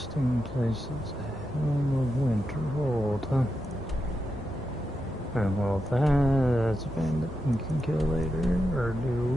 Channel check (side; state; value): both; normal; correlation 0.87